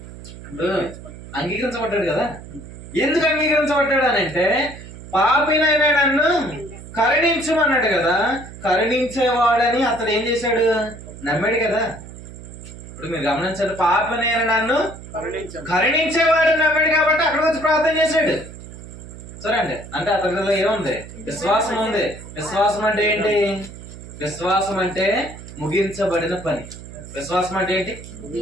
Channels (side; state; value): right; noise; hum, 15 dB below the sound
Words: అంగీకరించబడ్డాడు కదా. ఎందుకు అంగీకరించబడ్డాడు అని అంటే, పాపినైన నన్ను కరుణించమన్నాడు కదా. కరుణించేవాడని అతడు ఏం చేశాడు? నమ్మాడు కదా. ఇప్పుడు మీరు గమనించండి, పాపినైన నన్ను కరుణించేవాడు నమ్మాడు కాబట్టి అక్కడ వచ్చి ప్రార్థన చేశాడు. సరే అండి. అంటే అతనిలో ఏముంది? విశ్వాసం ఉంది. విశ్వాసం అంటే ఏంటి? విశ్వాసం అంటే ముగించబడిన పని. విశ్వాసం అంటే ఏంటి?